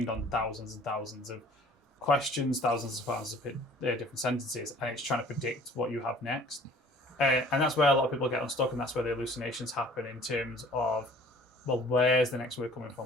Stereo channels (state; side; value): normal; both; correlation 0.51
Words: on thousands and thousands of questions, thousands of different sentences, and it's trying to predict what you have next. And that's where a lot of people get unstuck, and that's where the hallucinations happen in terms of, well, where's the next word coming